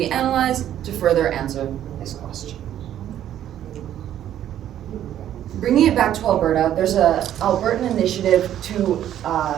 analyzed to further answer this question. Bringing it back to Alberta, there's an Albertan initiative to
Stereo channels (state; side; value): quieter; left; 11.2 dB